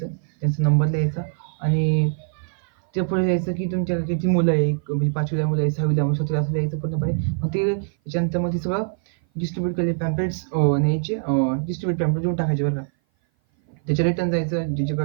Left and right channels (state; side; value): silent; left; 57 dB below the other